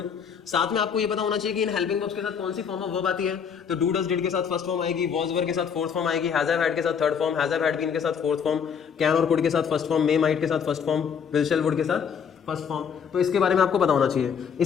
साथ में आपको ये पता होना चाहिए कि इन हेल्पिंग वर्ब्स के साथ कौन सी फॉर्म ऑफ वर्ब आती है। तो डू, डज, डिड के साथ फर्स्ट फॉर्म आएगी, वॉज, वर के साथ फोर्थ फॉर्म आएगी, हैज हैव हैड के साथ third form, has have had been के साथ फोर्थ फॉर्म, कैन और कुड के साथ फर्स्ट फॉर्म, मे, माइट के साथ first form, will, shall, would के साथ फर्स्ट फॉर्म। तो इसके बारे में आपको पता होना चाहिए।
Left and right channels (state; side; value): quieter; right; 7.0 dB